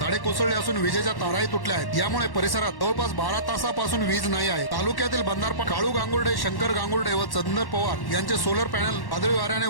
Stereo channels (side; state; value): right; late; 1.1 ms